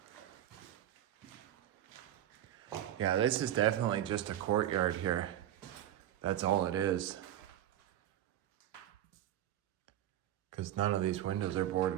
Yeah, this is definitely just a courtyard here. That's all it is. Because none of these windows are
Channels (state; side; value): quieter; left; 11.9 dB